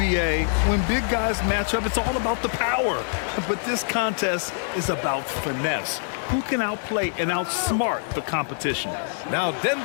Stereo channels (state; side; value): silent; right; 62 dB below the other